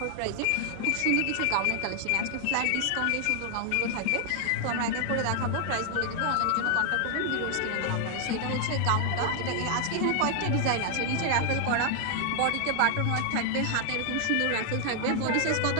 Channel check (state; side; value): different; both; correlation 0.00